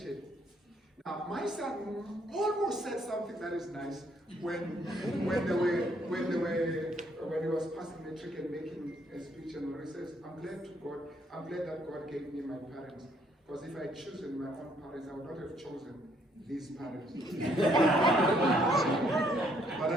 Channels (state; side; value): normal; both; correlation 0.68